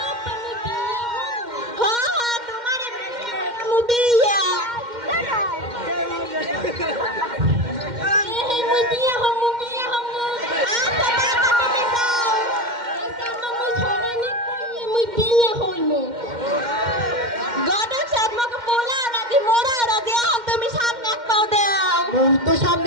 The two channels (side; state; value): left; late; 2.1 ms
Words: হ্যাঁ তোমার মুবিয়া মুই বিয়ে হমু আচ্ছা বাবা তুমি যাও আচ্ছা মুই ছড়ানি কইয়ে মুই বিয়ে হইমু গডক সাহেব মকে পোলা রাজি মোরা রাজি এখন তুমি সামনে এক পাও দাও মুই তো